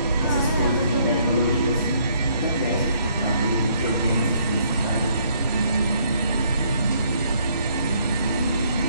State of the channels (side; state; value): both; inverted; correlation -0.67